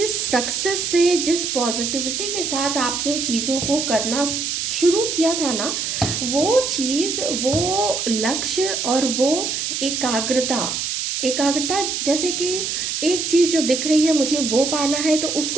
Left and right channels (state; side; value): noise; right; hiss, 2 dB below the sound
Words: सक्सेस से, जिस पॉजिटिविटी के साथ आपने चीज़ों को करना शुरू किया था ना, वो चीज़, वो लक्ष्य और वो एकाग्रता, एकाग्रता जैसे कि एक चीज़ जो दिख रही है मुझे वो पाना है, तो